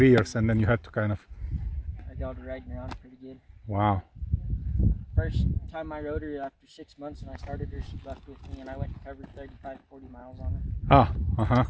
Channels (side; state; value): both; identical; correlation 1.00